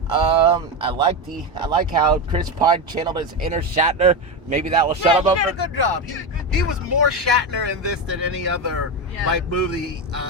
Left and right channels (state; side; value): normal; both; correlation 0.15